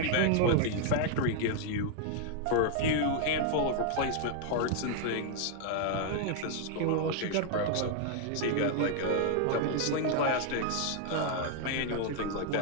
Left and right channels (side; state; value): both; different; correlation 0.00